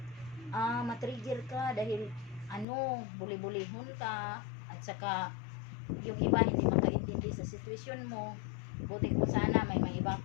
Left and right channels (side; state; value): right; drops out; at 2.7 s